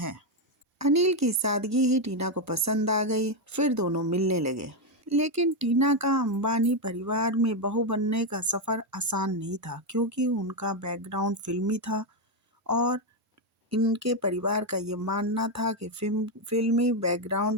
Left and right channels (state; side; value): normal; both; correlation 0.05